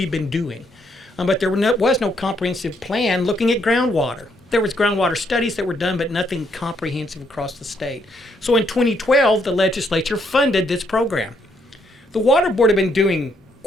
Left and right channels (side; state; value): both; normal; correlation 0.73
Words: been doing. But there was no comprehensive plan looking at groundwater. There was groundwater studies that were done, but nothing comprehensive across the state. So in 2012, the legislature funded this program. The Water Board had been doing